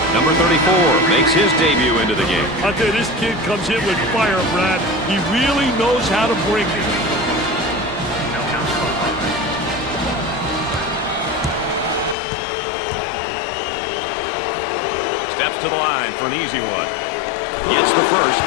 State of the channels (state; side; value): drops out; right; at 12.2 s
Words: Number 34 makes his debut into the game. I tell you, this kid comes in with fire, Brad. He really knows how to bring it. Steps to the line for an easy one. Gets the first.